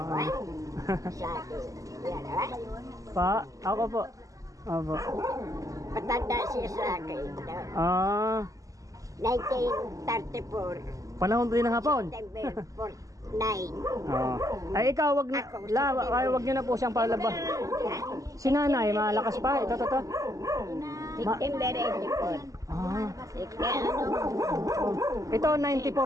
Ay, sa akin. Yan, ay. Pa, ako po. Opo. Matanda siya sa akin. Ah, 1934. panahon din ng hapon. September 9. Oh. Ay ikaw wag wag niyo na po siyang palabas. Si nanay malakas pa. Ito. September 84. Ah. Ano? Ito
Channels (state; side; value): late; left; 0.16 ms